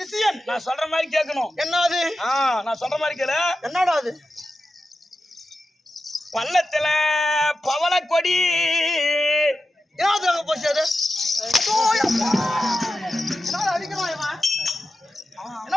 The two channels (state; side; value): normal; both; correlation 0.92